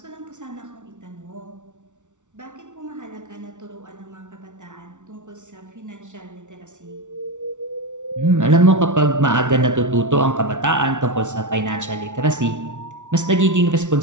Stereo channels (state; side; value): late; left; 0.86 ms